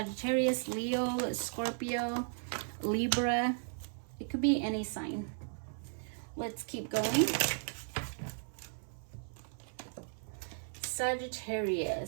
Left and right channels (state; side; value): silent; left; 54 dB below the other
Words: Leo, Scorpio, Libra. It could be any sign. Let's keep going.